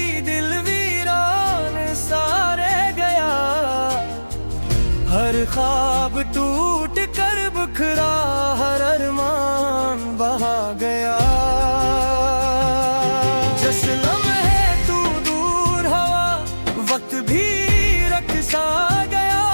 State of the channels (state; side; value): inverted; both; correlation -1.00